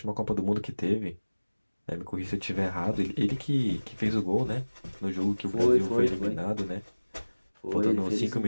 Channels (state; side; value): inverted; both; correlation -1.00